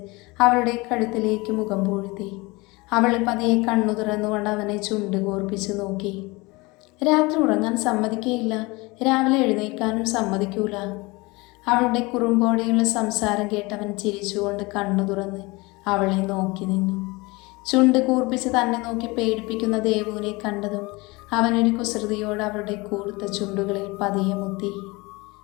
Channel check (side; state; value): right; quieter; 24.2 dB